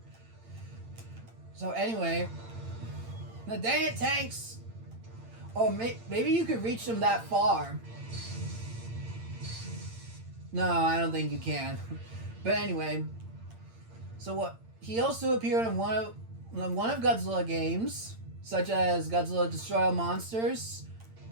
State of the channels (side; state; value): left; late; 8.8 ms